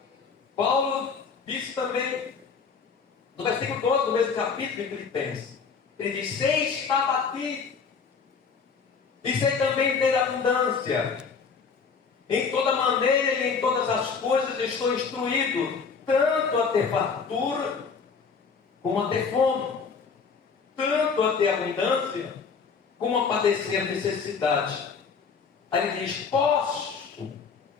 Paulo disse também, no versículo 12 do mesmo capítulo de Filipenses, ele diz: sei estar batido, e sei também ter abundância. Em toda maneira e em todas as coisas estou instruído, tanto a ter fartura, como a ter fome, tanto a ter abundância, como a padecer necessidade. Aí ele diz: posso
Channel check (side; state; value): right; quieter; 5.6 dB